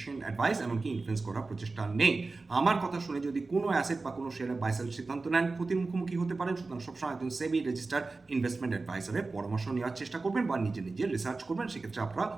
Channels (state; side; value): quieter; left; 3.7 dB